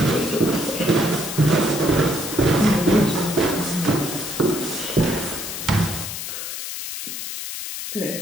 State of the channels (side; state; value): left; noise; hiss, 6 dB below the sound